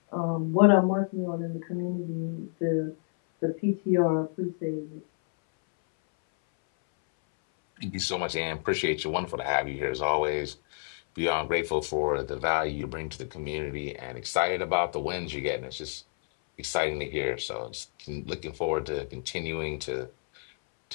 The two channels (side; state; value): right; silent; 58 dB below the other